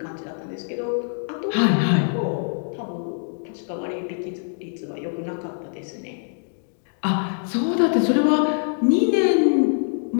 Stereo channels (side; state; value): right; silent; digital silence